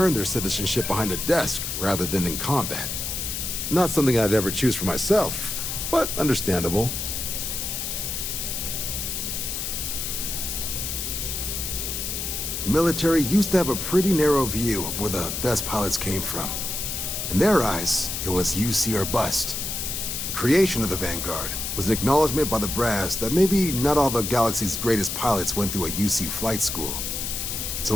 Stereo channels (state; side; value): noise; left; hiss, 3 dB below the sound